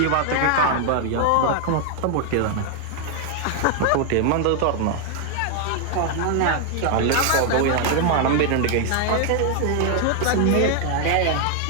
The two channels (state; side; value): different; both; correlation 0.00